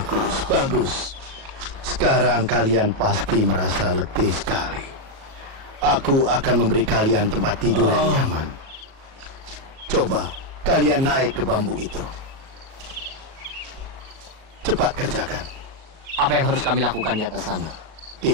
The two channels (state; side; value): late; left; 37 ms